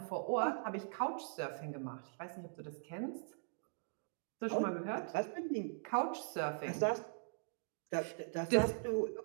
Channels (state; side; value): silent; left; digital silence